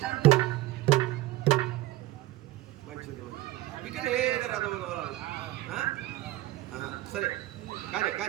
మంచిది ఇక్కడ ఏదో రథం తోలాలి. సరే కానీ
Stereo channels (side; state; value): left; quieter; 16.7 dB